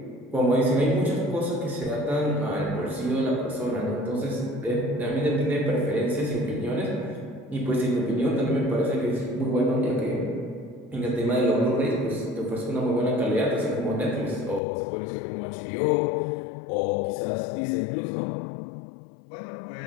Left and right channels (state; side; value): drops out; right; at 14.6 s